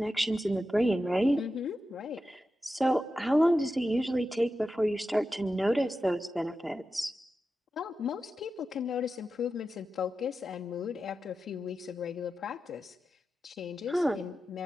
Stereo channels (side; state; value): both; normal; correlation 0.91